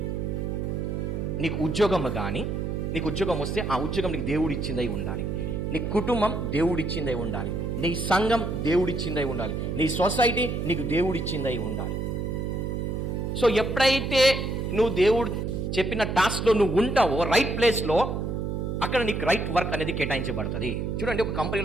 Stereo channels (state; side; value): noise; right; hum, 2 dB below the sound